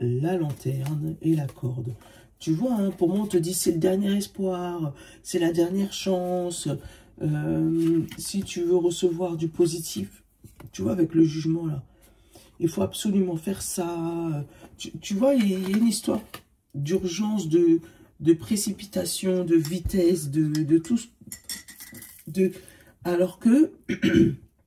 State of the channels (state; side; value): identical; both; correlation 1.00